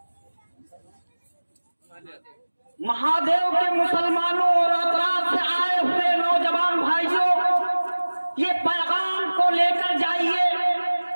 महादेव के मुसलमानों और अतराफ से आए हुए नौजवान भाइयों, ये पैगाम को लेकर जाइए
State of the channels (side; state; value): both; inverted; correlation -1.00